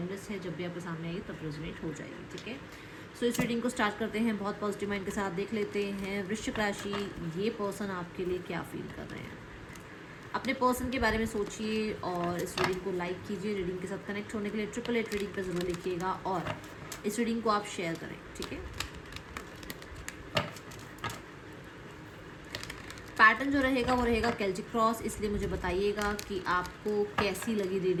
है, जब भी आपके सामने आएगी तब रेजोनेट हो जाएगी, ठीक है। सो इस रीडिंग को स्टार्ट करते हैं। बहुत पॉजिटिव माइंड के साथ देख लेते हैं वृश्चिक राशि, ये पर्सन आपके लिए क्या फील कर रहे हैं। अपने पर्सन के बारे में सोचिए और इस रीडिंग को लाइक कीजिए। रीडिंग के साथ कनेक्ट होने के लिए 888 रीडिंग पर जरूर लिखिएगा और इस रीडिंग को आप शेयर करें, ठीक है। पैटर्न जो रहेगा वो रहेगा केल्टिक क्रॉस, इसलिए मुझे बताइएगा कि आपको कैसी लगी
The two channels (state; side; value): identical; both; correlation 1.00